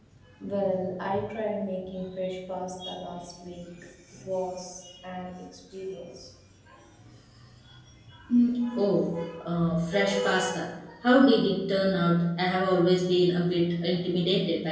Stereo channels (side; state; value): both; identical; correlation 1.00